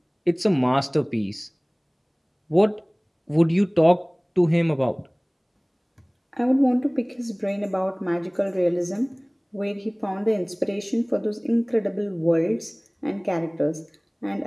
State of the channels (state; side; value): identical; both; correlation 1.00